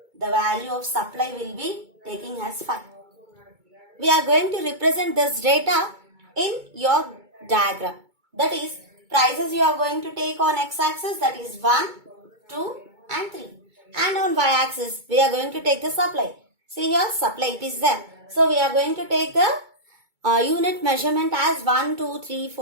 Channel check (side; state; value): left; late; 2.2 ms